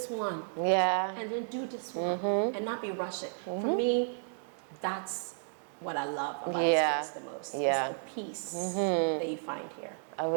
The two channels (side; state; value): left; silent; digital silence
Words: one. And then do this one and not be rushing. For me, that's what I love about this place the most. It's the peace that you find here. I